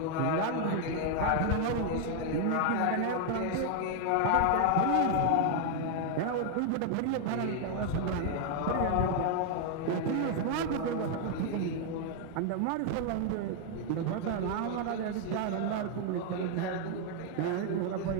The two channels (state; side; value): different; both; correlation 0.00